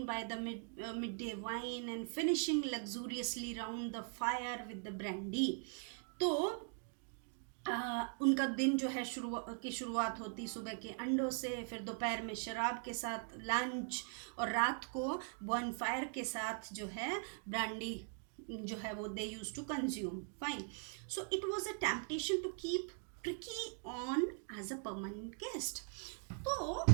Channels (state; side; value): silent; left; 50 dB below the other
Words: by the midday wine and finishing luxuriously round the fire with the brandy. तो उनका दिन जो है शुरुआत होती सुबह के अंडों से, फिर दोपहर में शराब के साथ लंच, और रात को बॉन फायर के साथ जो है ब्रांडी जो है वो they use to consume. Fine. So it was a temptation to keep Tricki on as a permanent guest. तो